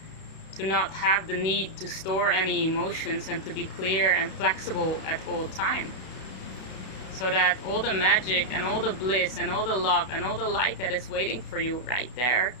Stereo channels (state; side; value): late; right; 32 ms